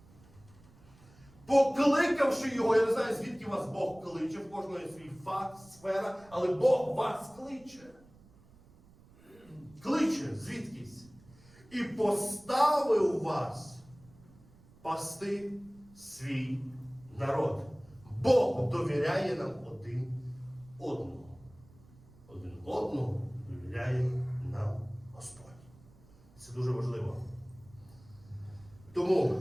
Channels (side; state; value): right; noise; rumble, 25 dB below the sound